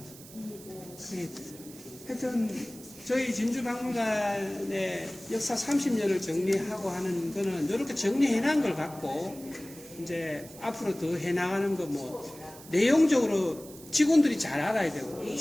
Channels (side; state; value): right; noise; hiss, 18 dB below the sound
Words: 하여튼 저희 진주박물관의 역사 30년을 정리하고 하는 거는 이렇게 정리해놓은 걸 갖고 이제 앞으로 더 해나가는 거 뭐 내용적으로 직원들이 잘 알아야 되고